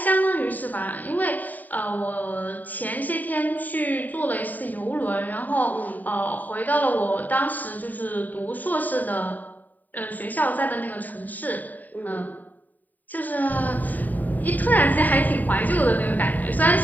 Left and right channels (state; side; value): late; right; 0.084 ms